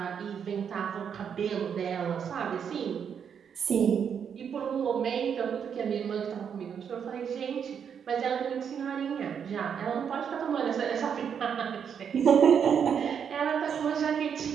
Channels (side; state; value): left; quieter; 7.5 dB